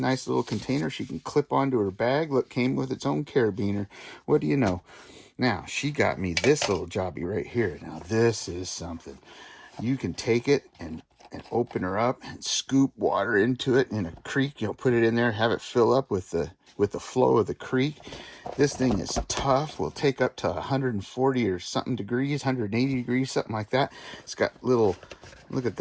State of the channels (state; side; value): identical; both; correlation 1.00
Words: little container she can clip onto her bag. Look, came with its own carabiner. What do you know? Now, she got me this little Jobbie right here. Now, this is something. You can take it and open her up and scoop water into it in a creek. Put it in there, have it fill up with the flow of the creek. This thing is tough. Will take up to 140 or something degrees, 180 degrees, something like that. It's got little, look at